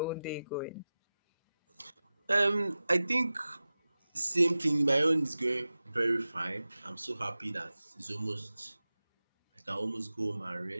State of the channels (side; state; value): both; inverted; correlation -0.96